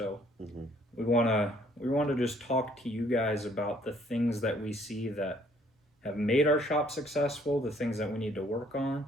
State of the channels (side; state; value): both; normal; correlation 0.62